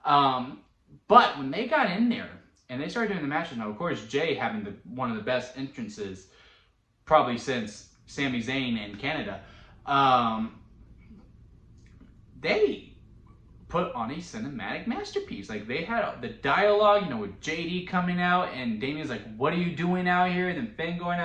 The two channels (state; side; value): identical; both; correlation 1.00